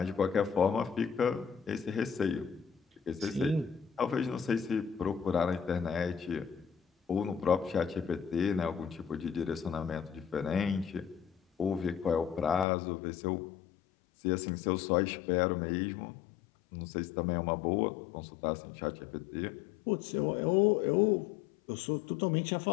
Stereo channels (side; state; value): right; drops out; at 12.7 s